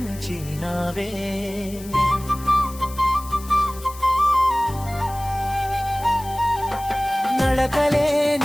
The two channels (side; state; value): left; noise; hiss, 17 dB below the sound